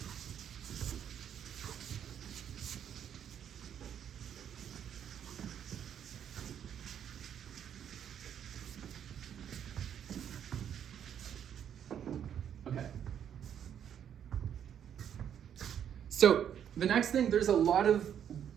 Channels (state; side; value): quieter; left; 9.1 dB